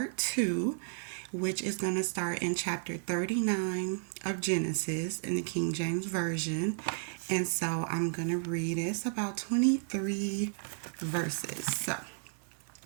two, which is going to start in chapter 39 of Genesis in the King James Version. And so I'm going to read it. It's about 23 verses. So,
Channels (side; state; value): left; silent; digital silence